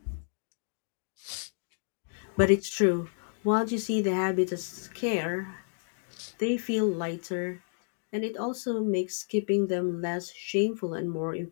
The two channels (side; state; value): right; silent; 57 dB below the other